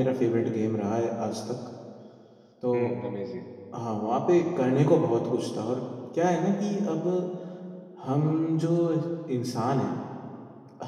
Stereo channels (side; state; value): both; identical; correlation 1.00